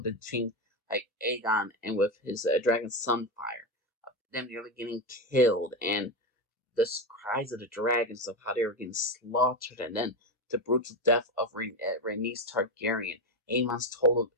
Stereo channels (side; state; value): both; normal; correlation 0.14